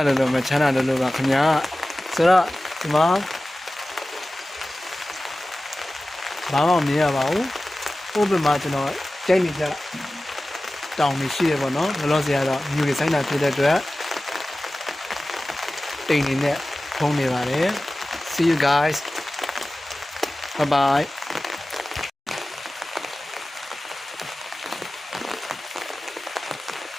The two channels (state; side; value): normal; both; correlation 0.96